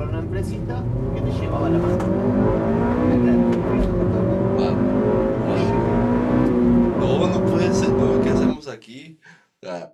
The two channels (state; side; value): identical; both; correlation 1.00